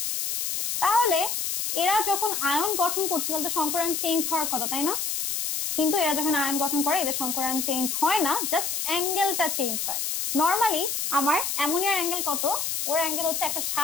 তাহলে এরা যখন আয়ন গঠন করছে তাহলে তো সংকরণ চেঞ্জ হওয়ার কথা, তাই না? কিন্তু এরা যখন আয়ন গঠন করে এদের সংকরণ চেঞ্জ হয় না, জাস্ট অ্যাঙ্গেলটা চেঞ্জ হয়। নর্মালি আমার অ্যামোনিয়ার অ্যাঙ্গেল কত, ওর অ্যাঙ্গেল হচ্ছে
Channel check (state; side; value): noise; left; hiss, 1 dB below the sound